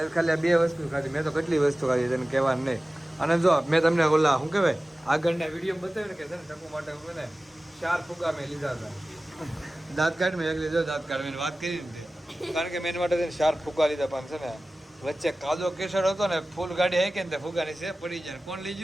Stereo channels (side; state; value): both; normal; correlation 0.96